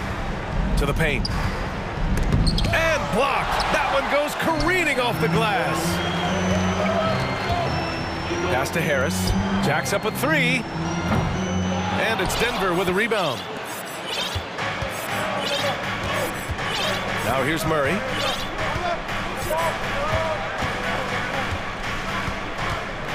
to the paint. And blocked. That one goes careening off the glass. Pass to Harris. Jacks up a 3. And it's Denver with a rebound. Now here's Murray.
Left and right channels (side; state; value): both; identical; correlation 1.00